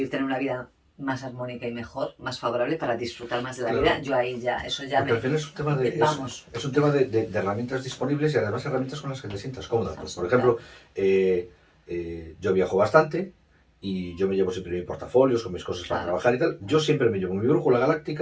tener una vida más armónica y mejor, más favorable, para disfrutar más de la vida, claro. yo ahí ya, eso ya Porque al me... final es un tema Vamos. es un tema de herramientas disponibles y además herramientas con las que te sientas cómoda. Pues, por ejemplo, Claro, yo viajo bastante y yo me llevo siempre mis portafolios con mis cosas para claro, trabajar y tal. Yo siempre me llevo mi brújula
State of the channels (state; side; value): identical; both; correlation 1.00